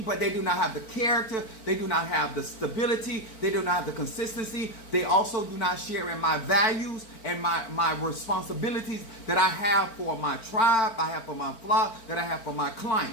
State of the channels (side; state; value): right; late; 4.4 ms